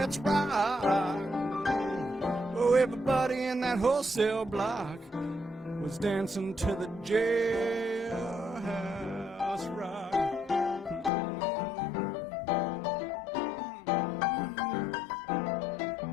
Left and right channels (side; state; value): right; drops out; at 11.1 s